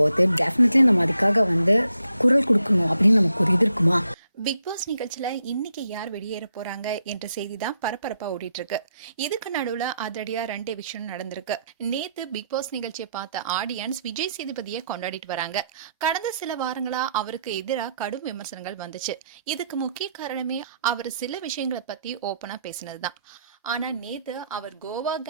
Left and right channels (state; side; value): inverted; both; correlation -0.77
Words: போது டெஃபினெட்லி நம்ம அதுக்காக வந்து குரல் கொடுக்கணும் அப்படின்னு நமக்கு ஒரு இது இருக்குமா? பிக் பாஸ் நிகழ்ச்சியில இன்னைக்கு யார் வெளியேற போறாங்க என்ற செய்தி தான் பரபரப்பா ஓடிட்டு இருக்கு. இதுக்கு நடுவுல அதிரடியா 2 விஷயம் நடந்திருக்கு. நேத்து பிக் பாஸ் நிகழ்ச்சியை பார்த்த ஆடியன்ஸ் விஜய் சேதுபதியை கொண்டாடிட்டு வராங்க. கடந்த சில வாரங்களா அவருக்கு எதிராக கடும் விமர்சனங்கள் வந்துச்சு. இதுக்கு முக்கிய காரணமே அவர் சில விஷயங்களை பத்தி ஓப்பனா பேசினதுதான். ஆனா நேத்து அவர் கோவா